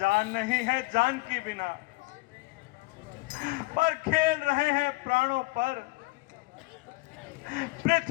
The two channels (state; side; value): quieter; right; 23.9 dB